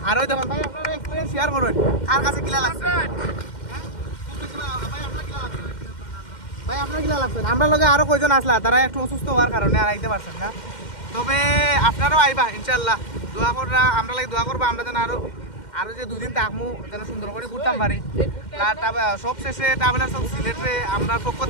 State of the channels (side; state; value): right; late; 2.1 ms